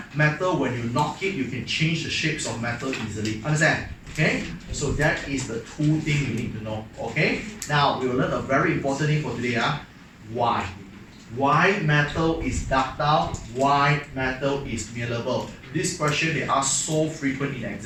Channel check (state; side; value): identical; both; correlation 1.00